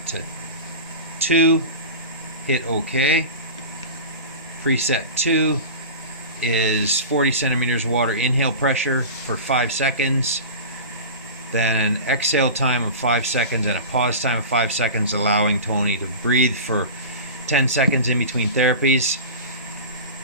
to 2, hit OK. Preset 2 is 40 centimeters water inhale pressure for 5 seconds, then an exhale time of 5 seconds and a pause time of 5 seconds, allowing Tony to breathe for 10 seconds in between therapies.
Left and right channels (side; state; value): both; inverted; correlation -0.31